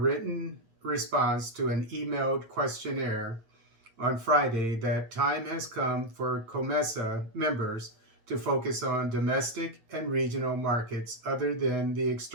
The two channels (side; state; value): left; late; 8.9 ms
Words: response to an emailed questionnaire on Friday that time has come for COMESA members to focus on domestic and regional markets other than the